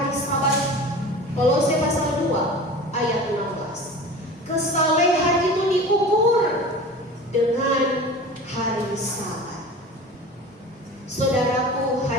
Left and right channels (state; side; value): normal; both; correlation 0.36